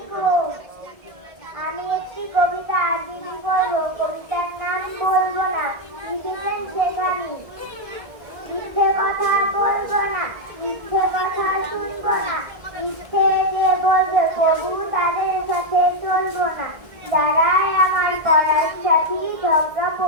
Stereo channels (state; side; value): late; left; 1.7 ms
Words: আমি একটি কবিতা আবৃত্তি করব। কবিতার নাম বলবো না। লিখেছেন সেখানে। মিথ্যে কথা বলবো না, মিথ্যে কথা শুনবো না, মিথ্যে যে বলবে প্রভু তাদের সাথে চলবো না। যারাই আমার পড়ার সাথী ঝগড়া